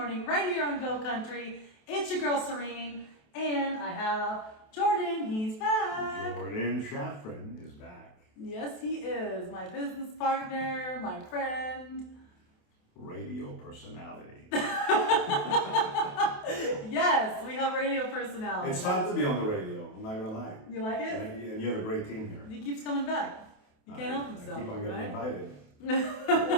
right here on Go Country. It's your girl Serene, and I have Jordan, he's back. Jordan Shafran is back. Yes, he is, my business partner, my friend. Radio personality. Yes, we have radio personality. It's fun to be on the radio, I'm not gonna lie. You like it? And you have a great team here. He keeps coming back. You can't help himself, I keep on getting right? invited.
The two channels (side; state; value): right; late; 28 ms